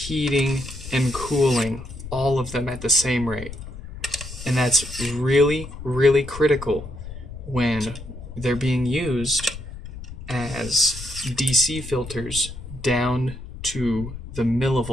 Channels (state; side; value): noise; left; rumble, 12 dB below the sound